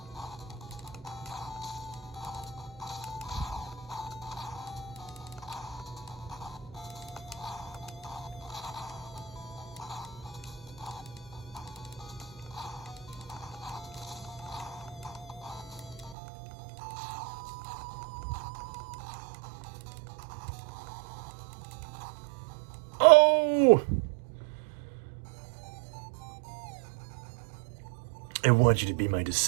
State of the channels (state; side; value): drops out; left; at 16.2 s